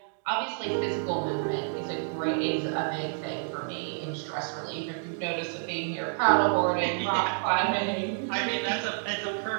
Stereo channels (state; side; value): silent; left; digital silence